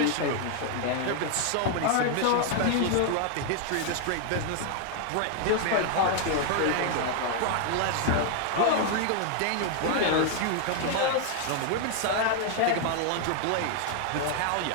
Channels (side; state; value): both; different; correlation 0.00